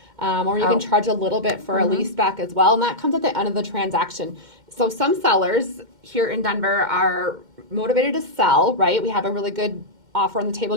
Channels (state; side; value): late; left; 2.1 ms